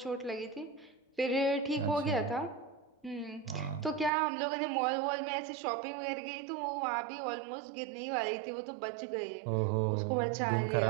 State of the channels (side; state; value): left; drops out; at 4.1 s